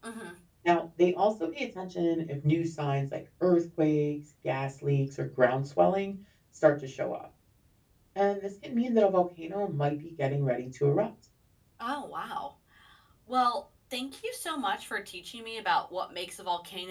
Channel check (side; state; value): both; identical; correlation 1.00